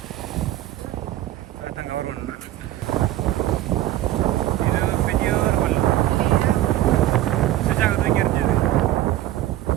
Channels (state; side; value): quieter; left; 14.1 dB